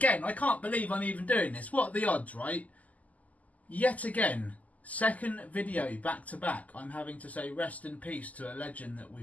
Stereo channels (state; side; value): late; right; 0.075 ms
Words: I can't believe I'm even doing this. What are the odds, right? Yet again, second video back to back, I'm having to say rest in peace to a legend that